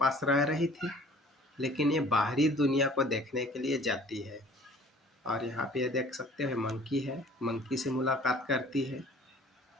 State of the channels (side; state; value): both; normal; correlation 0.51